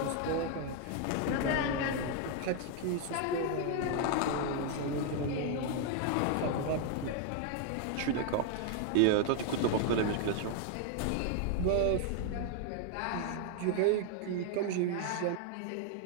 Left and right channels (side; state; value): both; different; correlation 0.00